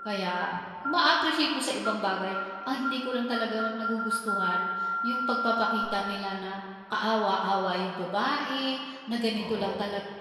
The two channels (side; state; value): both; identical; correlation 1.00